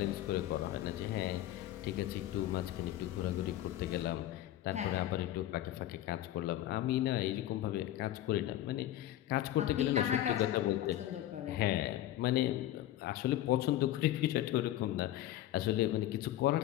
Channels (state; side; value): quieter; right; 13.5 dB